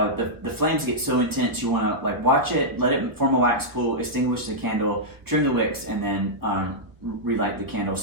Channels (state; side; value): late; left; 1.2 ms